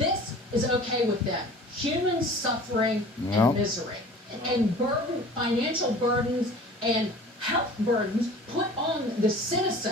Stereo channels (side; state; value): both; normal; correlation 0.44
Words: is okay with them. Human suffering and misery. And financial burdens and health burdens put on the